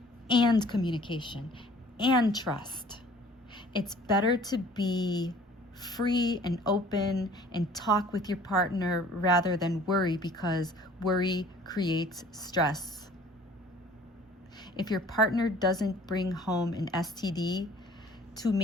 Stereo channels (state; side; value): normal; both; correlation 0.52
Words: and communication and trust. It's better to be free and open and talk with your partner rather than worry, because worry creates stress. If your partner doesn't bring home an STD to